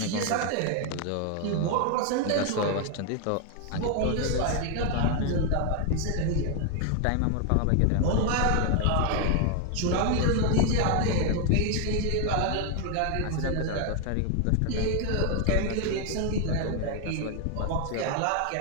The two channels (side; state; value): both; different; correlation 0.01